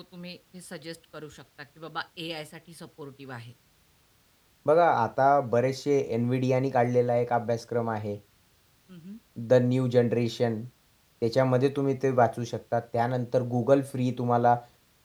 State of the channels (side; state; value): both; identical; correlation 1.00